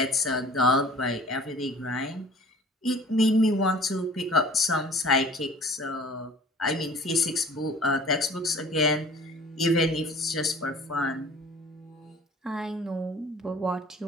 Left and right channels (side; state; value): both; normal; correlation 0.47